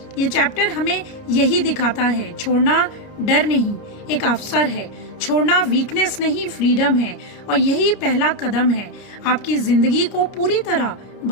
ये चैप्टर हमें यही दिखाता है, छोड़ना डर नहीं, एक अवसर है। छोड़ना वीकनेस नहीं, फ्रीडम है, और यही पहला कदम है आपकी जिंदगी को पूरी तरह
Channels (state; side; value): late; right; 29 ms